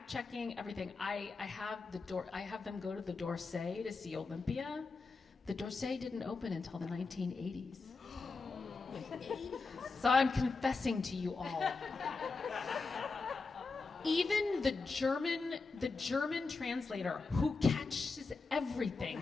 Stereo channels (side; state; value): right; quieter; 4.1 dB